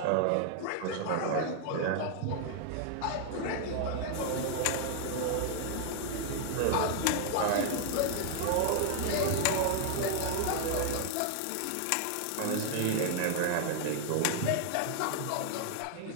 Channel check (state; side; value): different; both; correlation 0.00